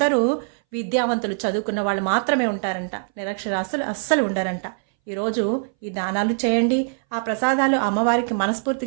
విద్యావంతులు, చదువుకున్న వాళ్ళు మాత్రమే ఉంటారంట. నిరక్షరాస్యులు అస్సలు ఉండరంట. ఈరోజు ఈ దానాలు చేయండి. ఆ ప్రసాదాలు అమ్మవారికి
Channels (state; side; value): silent; left; 62 dB below the other